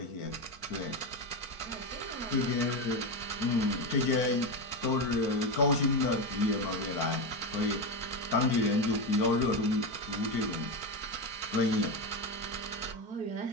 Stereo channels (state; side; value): late; right; 4.5 ms